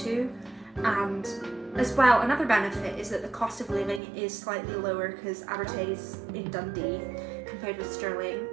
And as well, another benefit is that the cost of living is slightly lower because Abertay is in Dundee compared with Stirling.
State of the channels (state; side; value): drops out; left; at 4.0 s